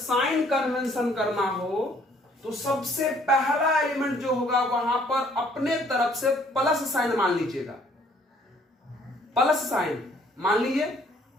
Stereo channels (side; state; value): both; normal; correlation 0.62